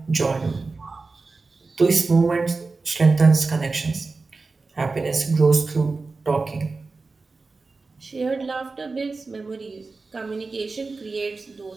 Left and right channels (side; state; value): left; quieter; 3.9 dB